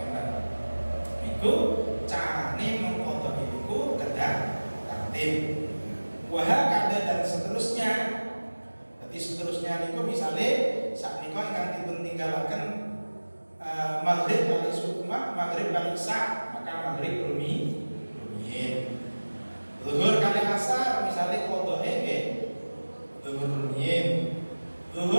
Iku carane mengkodoi niku kedah tertib. Wah kada dan seterusnya. Jadi seterusnya niku misale sak nika ingkang dipun tinggalaken maghrib kali subuh maghrib kali isya maka maghrib rumiyin. Zuhur kali asar misale qodhoe nggih zuhur rumiyin.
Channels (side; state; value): both; inverted; correlation -1.00